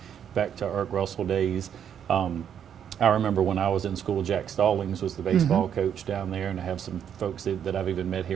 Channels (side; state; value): left; quieter; 8.7 dB